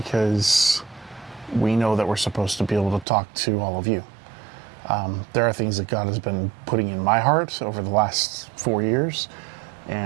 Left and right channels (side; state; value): left; drops out; at 3.1 s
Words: we know that we're supposed to be able to talk to all of you. There are things that God has been putting in my heart over the last 4 years,